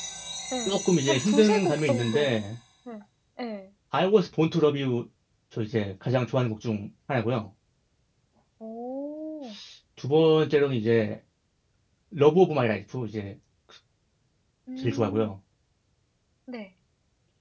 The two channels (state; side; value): identical; both; correlation 1.00